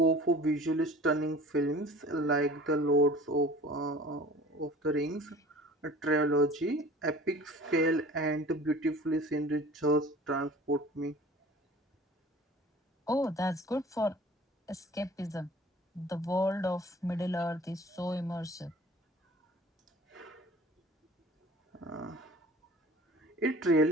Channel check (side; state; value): both; normal; correlation 0.45